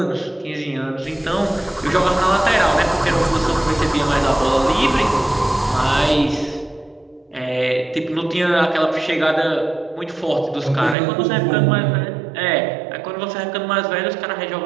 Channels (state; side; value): drops out; left; at 11.0 s